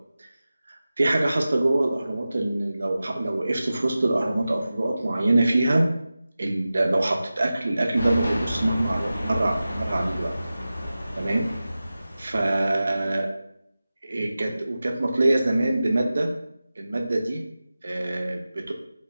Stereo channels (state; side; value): inverted; both; correlation -0.95